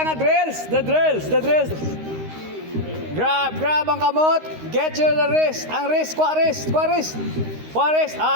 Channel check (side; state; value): left; late; 13 ms